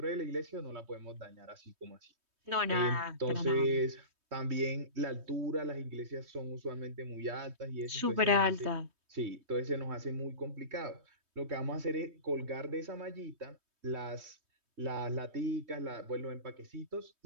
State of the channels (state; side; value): late; left; 3.2 ms